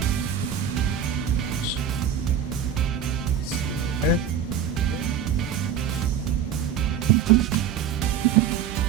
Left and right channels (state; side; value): quieter; left; 8.1 dB